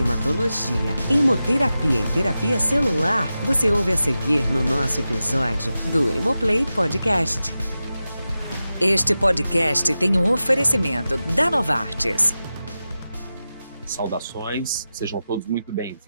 hemoterapia e terapia celular, você ouve a seguir no nosso episódio do Hemoplay Podcast. Este podcast tem um oferecimento da Novartis. Saudações, sejam todos muito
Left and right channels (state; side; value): inverted; both; correlation -0.93